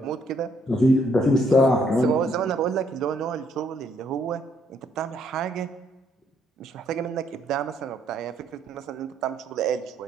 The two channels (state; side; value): normal; both; correlation 0.70